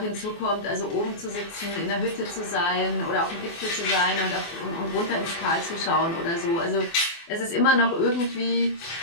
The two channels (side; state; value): right; late; 24 ms